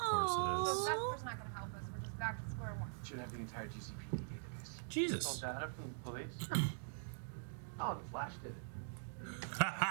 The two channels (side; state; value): left; silent; digital silence